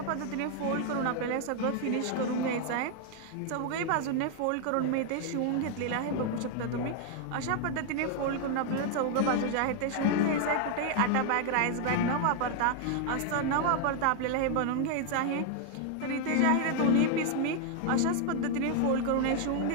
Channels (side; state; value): both; different; correlation 0.00